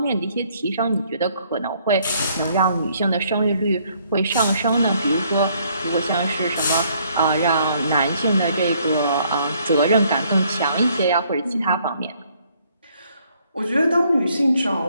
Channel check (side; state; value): both; inverted; correlation -0.66